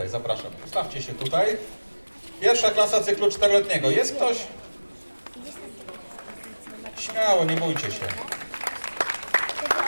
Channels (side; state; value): both; inverted; correlation -1.00